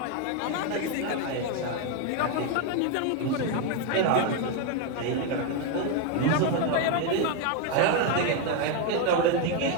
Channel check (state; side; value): different; both; correlation 0.02